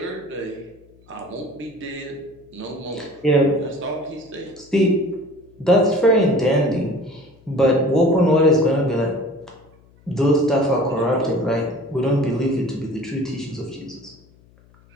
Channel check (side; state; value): left; noise; hum, 29 dB below the sound